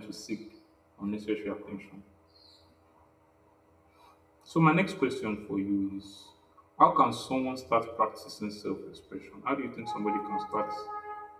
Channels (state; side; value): identical; both; correlation 1.00